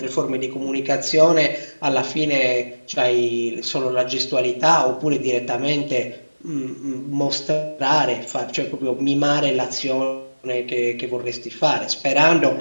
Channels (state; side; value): inverted; both; correlation -1.00